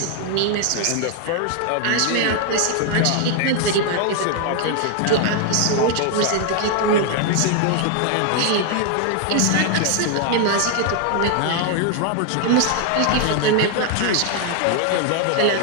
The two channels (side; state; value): both; different; correlation 0.00